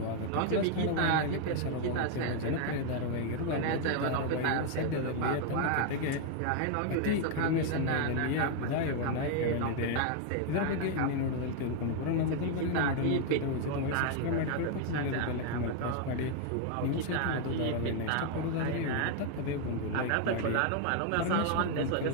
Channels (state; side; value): different; both; correlation 0.00